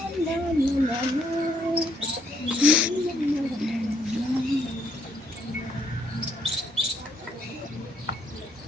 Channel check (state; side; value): normal; both; correlation 0.70